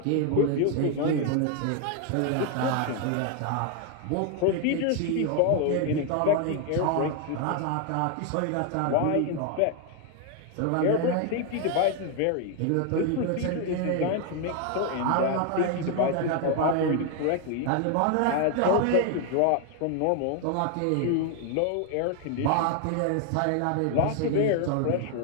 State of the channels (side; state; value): both; different; correlation 0.01